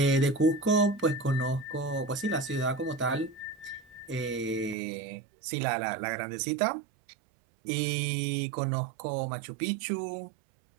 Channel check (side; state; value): left; drops out; at 4.8 s